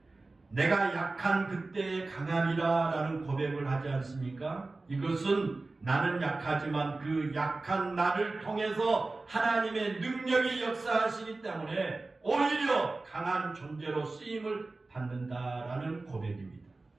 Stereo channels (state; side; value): quieter; left; 3.4 dB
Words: 내가 약한 그때의 강함이라 라는 고백을 하지 않습니까? 이것은 나는 약하지만 그 약한 나를 통해서 하나님의 능력이 역사하시기 때문에 오히려 강한 존재로 쓰임을 받는다라는 고백입니다.